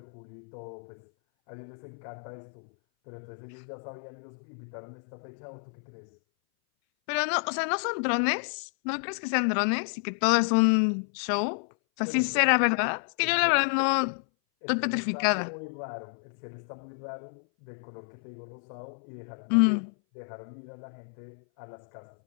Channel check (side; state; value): right; silent; 58 dB below the other